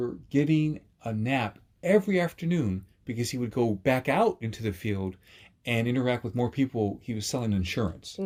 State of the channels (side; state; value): both; identical; correlation 1.00